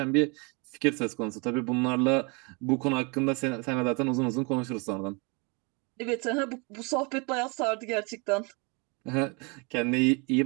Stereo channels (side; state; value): left; quieter; 31.0 dB